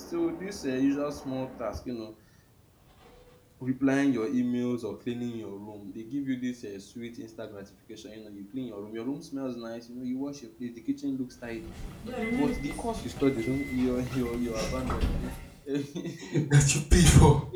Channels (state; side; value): identical; both; correlation 1.00